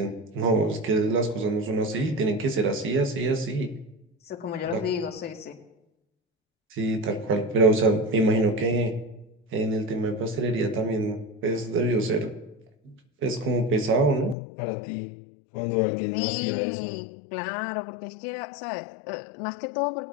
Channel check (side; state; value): right; drops out; at 14.4 s